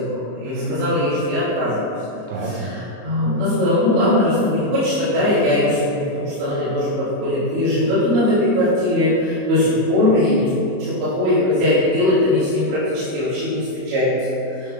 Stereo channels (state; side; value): late; left; 34 ms